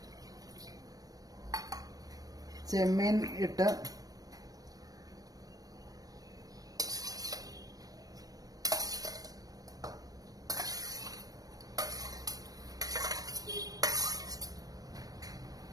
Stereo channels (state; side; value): late; left; 0.18 ms